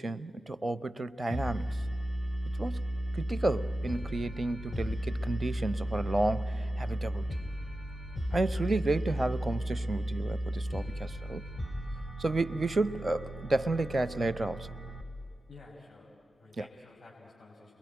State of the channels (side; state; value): both; normal; correlation 0.93